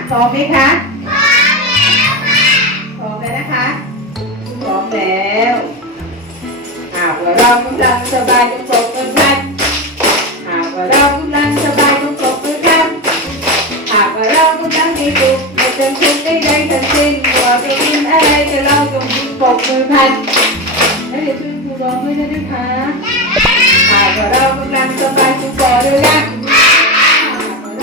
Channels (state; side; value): normal; both; correlation 0.19